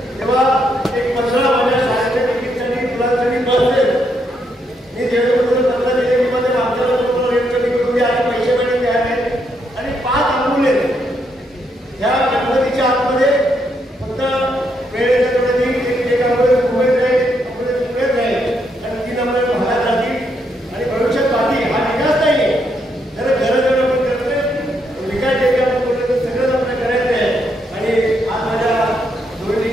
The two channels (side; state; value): both; normal; correlation 0.77